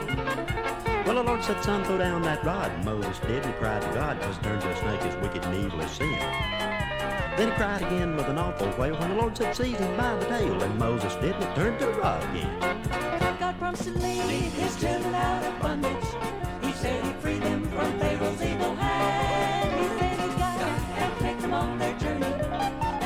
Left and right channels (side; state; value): both; identical; correlation 1.00